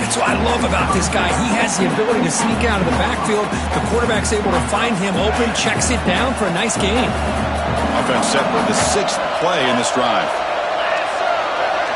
That's what I love about this guy. He has the ability to sneak out of the backfield. The quarterback's able to find him open, checks it down for a nice gain. Offense set for the 6th play in this drive.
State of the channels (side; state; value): both; identical; correlation 1.00